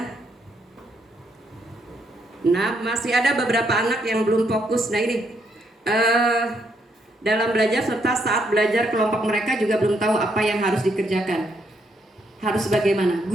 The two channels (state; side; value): normal; both; correlation 0.75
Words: Nah, masih ada beberapa anak yang belum fokus. Nah ini dalam belajar serta saat belajar kelompok mereka juga belum tahu apa yang harus dikerjakan. Harus bagaimana?